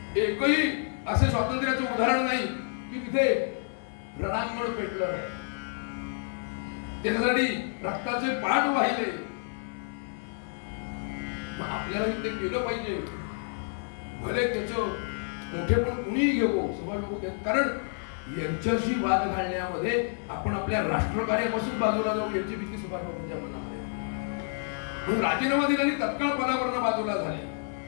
एकही असे स्वातंत्र्याचं उदाहरण नाही की तिथे रणांगण पेटलं नाही. त्याच्यासाठी रक्ताचे पाठ वाहिले. मग आपल्याला ते केलं पाहिजे. भले त्याचं मोठेपण कुणीही घेऊ सुभाष बाबू, कारण यांच्याशी वाद घालण्यामध्ये आपण आपल्या राष्ट्रकार्यापासून बाजूला जाऊ याची भीती सुभाष बाबूंच्या मनामध्ये. म्हणून राजीनामा दिला आणि तत्काळ पदावरनं बाजूला झाले.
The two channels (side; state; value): right; silent; 58 dB below the other